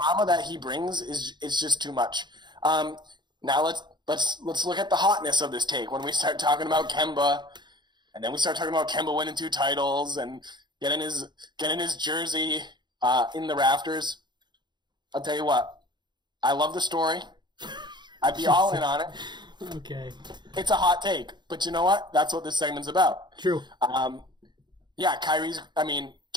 that he brings is just too much. Now let's look at the hotness of this take when we start talking about Kemba, and then we start talking about Kemba winning 2 titles and getting his jersey in the rafters. I'll tell you what, I love the story. I'd be all in on it. Okay. It's a hot take, but you know what? That's what this segment's about. True. Yeah,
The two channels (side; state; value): left; late; 0.21 ms